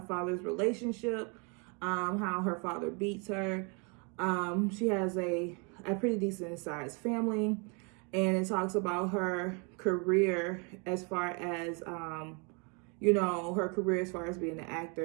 father's relationship, how her father beats her. She has a pretty decent sized family, and it talks about her career as far as her career as far as being an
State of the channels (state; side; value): quieter; left; 34.0 dB